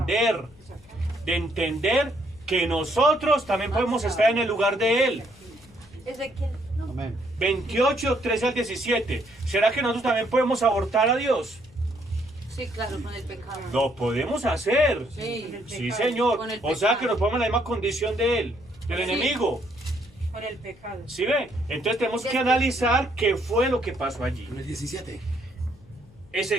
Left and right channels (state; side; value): noise; left; hum, 26 dB below the sound